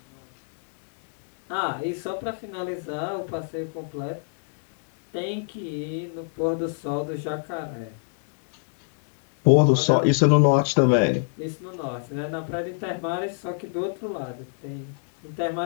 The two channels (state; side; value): silent; right; digital silence